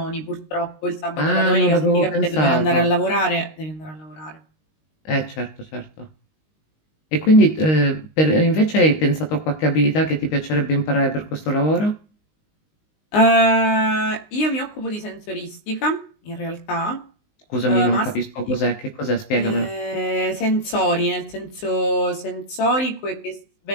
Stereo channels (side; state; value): right; late; 19 ms